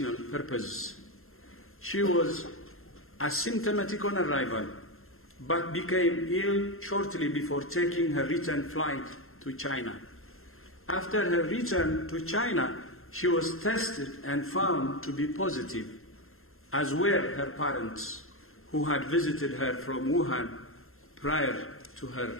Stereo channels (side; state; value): right; late; 0.61 ms